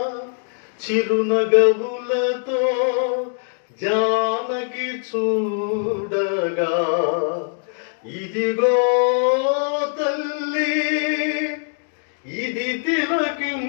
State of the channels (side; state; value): right; silent; 64 dB below the other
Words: చిరునగవులతో జానకి చూడగా, ఇదిగో తల్లి ఇది